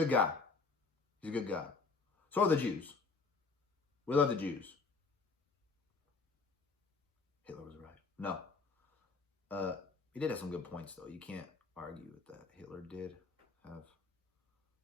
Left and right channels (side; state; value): right; quieter; 4.3 dB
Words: guy. He's a good guy. So are the Jews. We love the Jews. Hitler was right. No. He did have some good points, though. You can't argue with that. Hitler did have